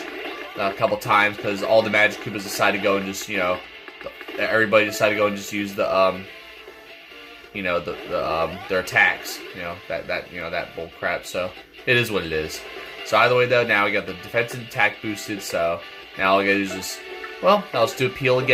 a couple times because all the Magikoopas decided to go and just, you know, everybody decided to go and just use the you know, their attacks, you know, that bull crap. So it is what it is. So either way though, now we got the defense and attack boosted. So now all I gotta do is just, well, now let's do a peel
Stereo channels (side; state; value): both; identical; correlation 1.00